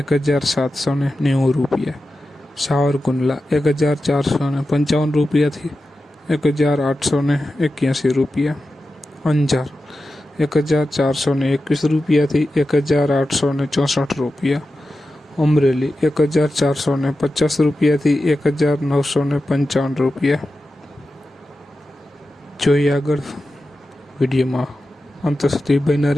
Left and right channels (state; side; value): normal; both; correlation 0.92